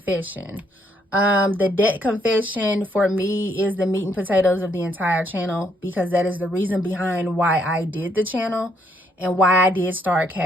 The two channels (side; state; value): both; normal; correlation 0.71